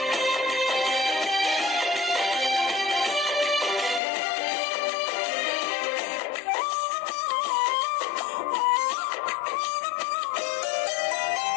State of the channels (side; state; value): right; drops out; at 4.0 s